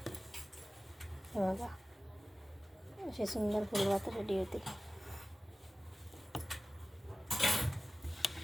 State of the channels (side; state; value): both; normal; correlation 0.97